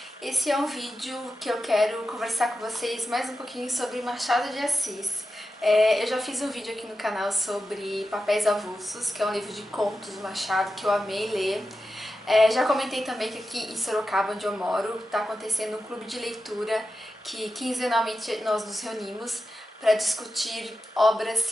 Esse é um vídeo que eu quero conversar com vocês mais um pouquinho sobre Machado de Assis. Eu já fiz um vídeo aqui no canal sobre Papéis Avulsos, que é um livro de contos do Machado que eu amei ler. Já comentei também que aqui em Sorocaba, onde eu moro, está acontecendo um clube de leitura que quinzenalmente nós nos reunimos para discutir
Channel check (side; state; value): both; normal; correlation 0.91